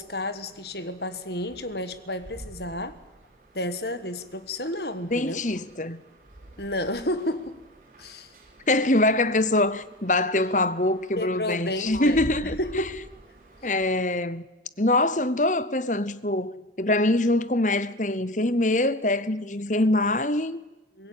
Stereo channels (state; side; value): normal; both; correlation 0.28